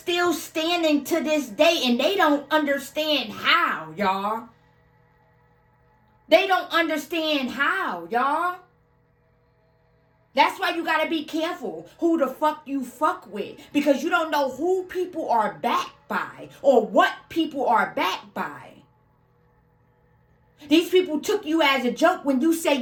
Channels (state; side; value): identical; both; correlation 1.00